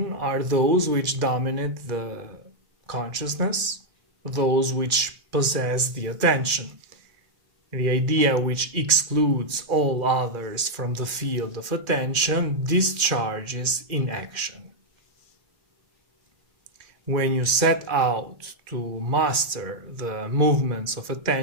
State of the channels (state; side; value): late; left; 2.1 ms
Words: are those which dominate the consciousness, those which possess the attention. The idea which excludes all others from the field of attention discharges in action. When you set out to master the movements of